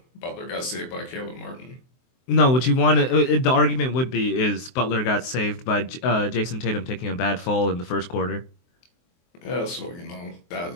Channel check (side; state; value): right; late; 23 ms